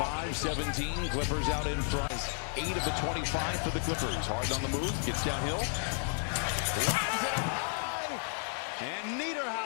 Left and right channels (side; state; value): right; silent; 56 dB below the other